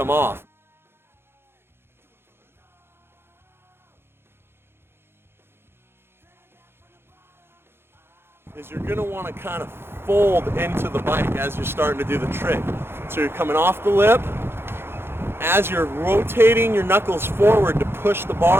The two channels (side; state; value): left; late; 0.11 ms